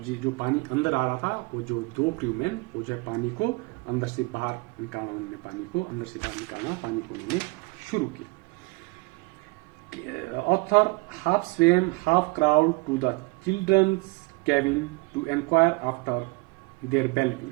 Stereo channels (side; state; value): left; quieter; 26.6 dB